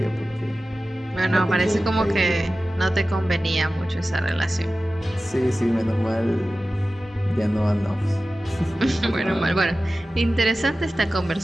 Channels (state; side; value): normal; both; correlation 0.95